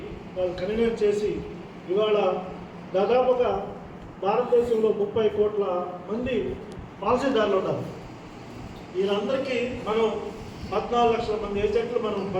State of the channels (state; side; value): identical; both; correlation 1.00